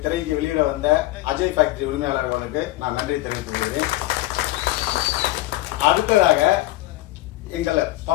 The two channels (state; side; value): quieter; right; 17.4 dB